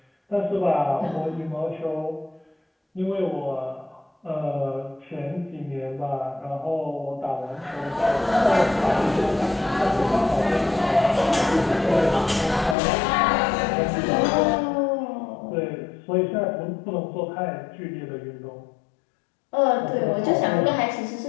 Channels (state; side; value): drops out; right; at 12.8 s